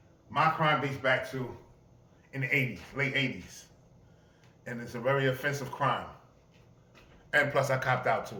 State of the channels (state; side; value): identical; both; correlation 1.00